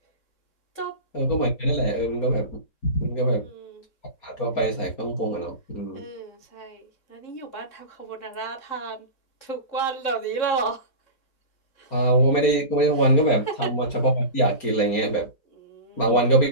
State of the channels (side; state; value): right; late; 4.3 ms